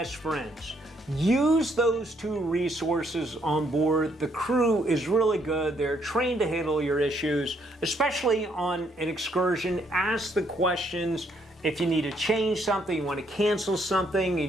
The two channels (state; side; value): normal; both; correlation 0.71